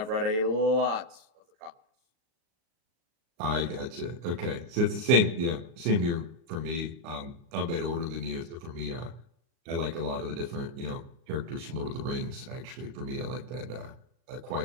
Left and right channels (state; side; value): late; left; 37 ms